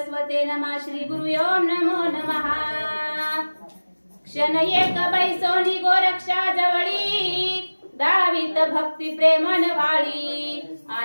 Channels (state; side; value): inverted; both; correlation -1.00